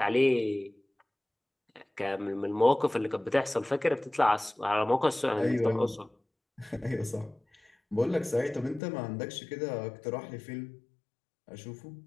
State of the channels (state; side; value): drops out; right; at 8.8 s